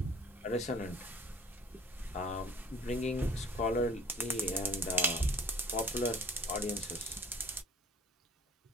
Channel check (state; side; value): normal; both; correlation 0.49